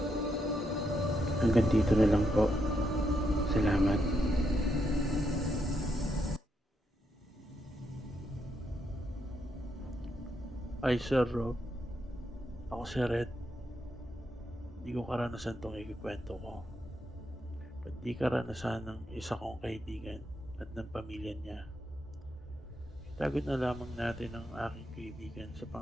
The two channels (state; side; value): normal; both; correlation 0.80